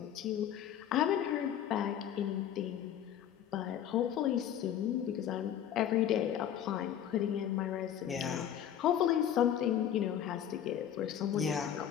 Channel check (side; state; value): right; quieter; 10.1 dB